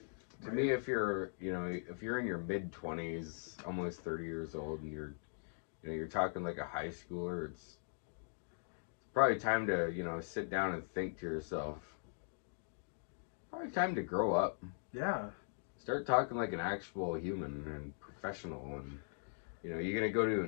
To me, if you're in your mid-20s, almost 30 years old, and you're talking like a high schooler, it's probably time to, sit down and think to yourself. Probably time to grow up. Yeah. Start talking like an actual human and professional, and you're gonna go to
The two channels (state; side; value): silent; right; digital silence